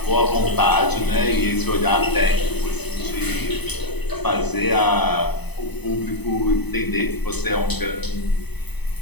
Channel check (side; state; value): right; late; 0.99 ms